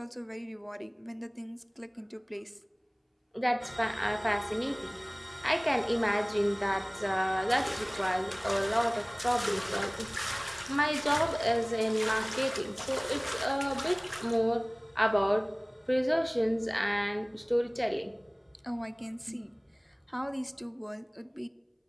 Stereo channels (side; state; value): both; identical; correlation 1.00